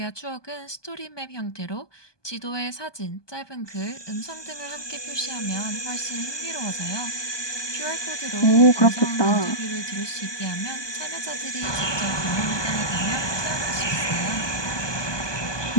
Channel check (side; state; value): right; late; 1.2 ms